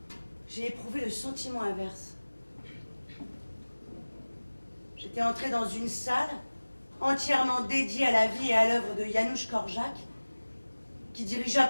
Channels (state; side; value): inverted; both; correlation -1.00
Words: j'ai éprouvé le sentiment inverse. J'étais entrée dans une salle entièrement dédiée à la vie et à l'œuvre de Janusz Korczak, qui dirigea